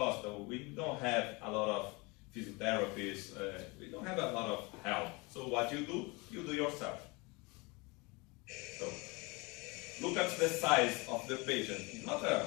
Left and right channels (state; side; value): quieter; right; 26.8 dB